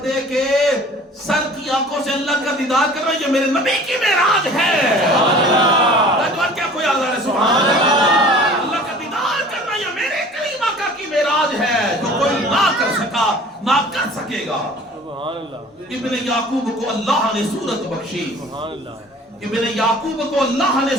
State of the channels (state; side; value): normal; both; correlation 0.46